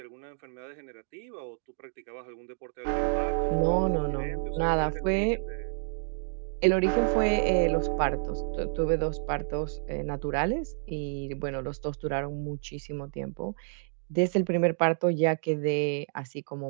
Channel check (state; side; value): silent; left; digital silence